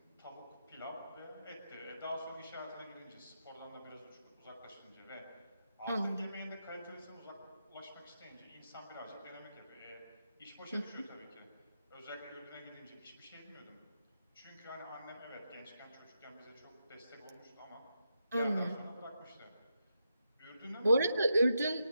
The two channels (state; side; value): inverted; both; correlation -0.84